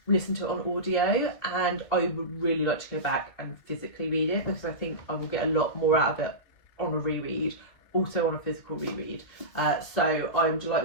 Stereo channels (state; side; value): late; right; 2.6 ms